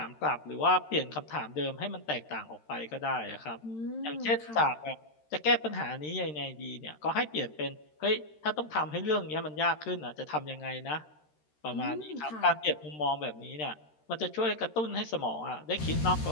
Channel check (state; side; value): late; right; 13 ms